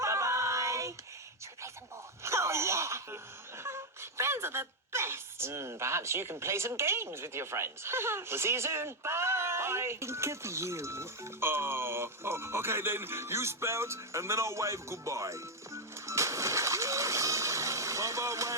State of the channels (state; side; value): normal; both; correlation 0.02